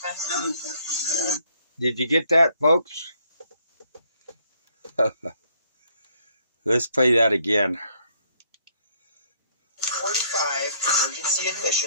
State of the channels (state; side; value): inverted; both; correlation -0.67